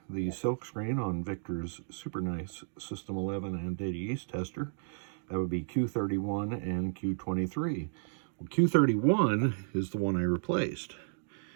the silk screen on Victor's super nice System 11 and Data East tester, that would be Q31 and Q23. Well, Q31 is the one I replaced.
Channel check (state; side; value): silent; left; digital silence